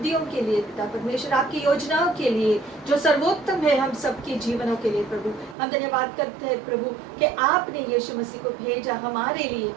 के लिए पिता परमेश्वर, आपकी योजनाओं के लिए जो सर्वोत्तम है हम सबके जीवनों के लिए प्रभु। हम धन्यवाद करते हैं प्रभु कि आपने यीशु मसीह को भेजा हमारे लिए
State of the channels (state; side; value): drops out; left; at 5.6 s